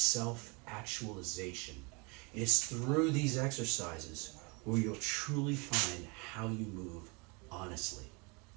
It's through these exercises where you'll truly find how you move honestly.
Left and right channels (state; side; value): quieter; left; 29.9 dB